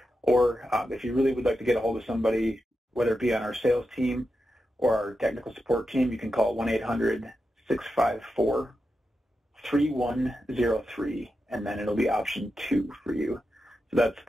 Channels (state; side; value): normal; both; correlation 0.88